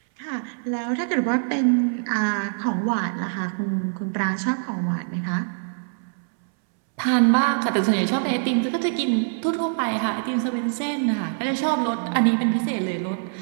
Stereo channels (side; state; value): left; silent; 63 dB below the other